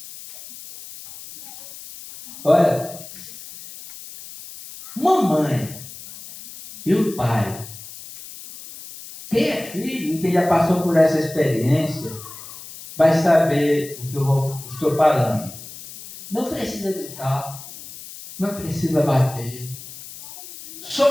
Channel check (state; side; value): noise; left; hiss, 15 dB below the sound